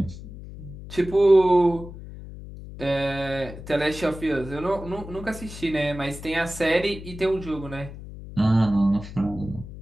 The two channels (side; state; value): left; noise; hum, 13 dB below the sound